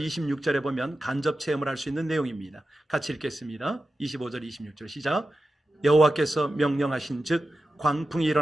26절에 보면 간접 체험을 할 수 있는 내용입니다. 같이 읽겠습니다. 25절, 26절 시작. 여호와께서 명령하신 즉 광풍이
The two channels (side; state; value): both; normal; correlation 0.92